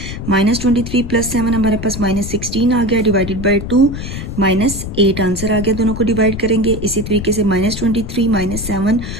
-23 प्लस 7 हमारे पास -16 आ गया डिवाइडेड बाय 2, -8 आंसर आ गया, दोनों को डिवाइड करेंगे। इसी तरीके से -23 - 7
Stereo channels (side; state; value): left; noise; rumble, 7 dB below the sound